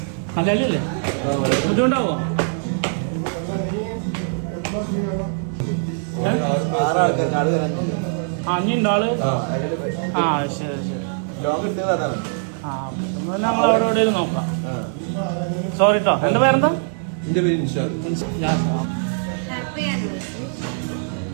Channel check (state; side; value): silent; left; digital silence